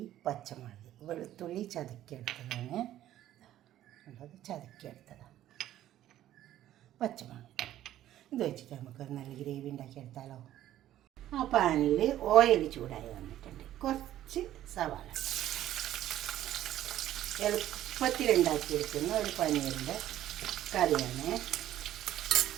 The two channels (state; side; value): quieter; left; 12.9 dB